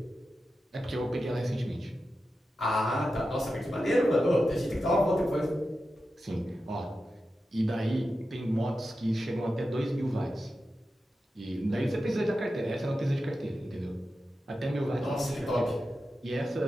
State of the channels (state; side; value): normal; both; correlation 0.91